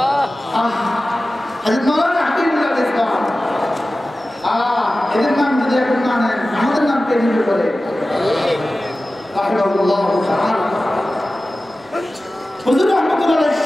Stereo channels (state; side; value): normal; both; correlation 0.95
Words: হযরত মাওলানা হাকিমুল্লাহ ইসলাম এদের নাম যদি এখন না নেন, আমাদের নাম কে নিবে বলে? রাহিমাহুল্লাহ তাআলা। হুজুর রাহমাতুল্লাহ